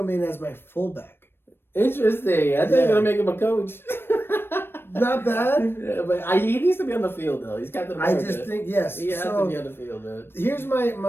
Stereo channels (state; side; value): late; right; 0.11 ms